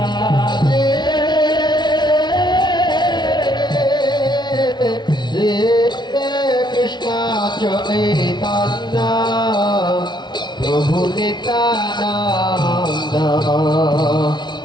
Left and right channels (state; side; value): late; right; 0.21 ms